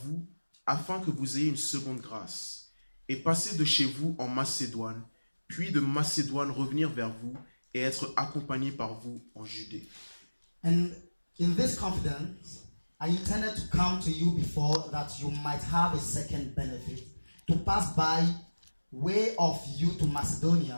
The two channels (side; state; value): both; inverted; correlation -1.00